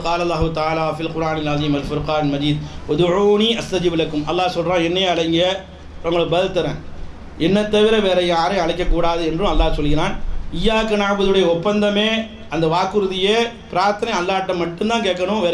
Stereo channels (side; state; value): both; identical; correlation 1.00